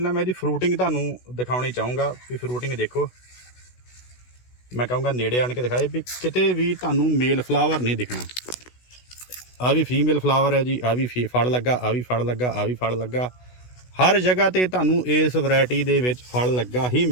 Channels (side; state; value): right; late; 16 ms